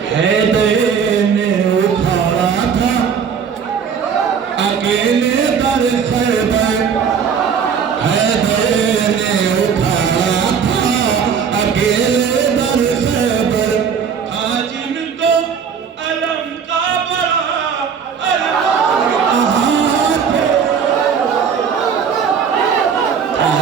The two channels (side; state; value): left; quieter; 6.8 dB